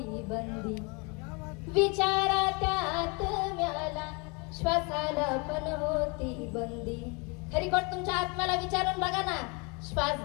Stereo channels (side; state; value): right; quieter; 30.6 dB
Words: बंदी, विचारा त्यात म्याला, श्वासाला पण होती बंदी. खरी गोष्ट तुमच्या आत्म्याला विचारून बघा ना, श्वास